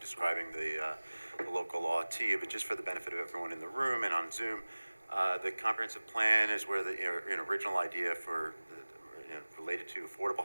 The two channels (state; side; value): inverted; both; correlation -1.00